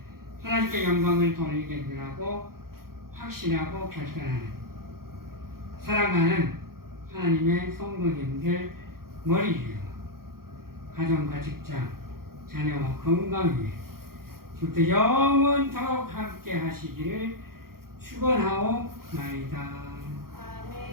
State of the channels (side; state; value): left; late; 0.93 ms